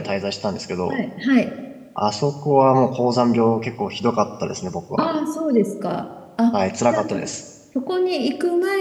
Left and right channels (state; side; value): identical; both; correlation 1.00